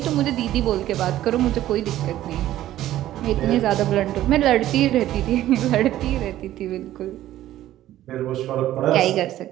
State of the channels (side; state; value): left; quieter; 13.6 dB